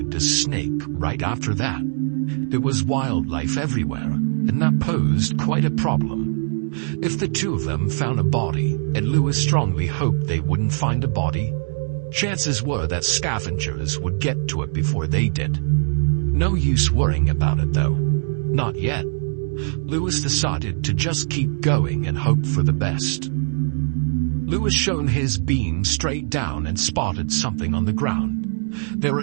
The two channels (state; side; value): silent; left; digital silence